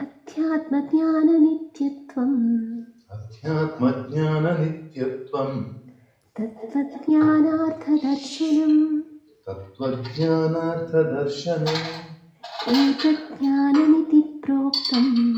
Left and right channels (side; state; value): both; identical; correlation 1.00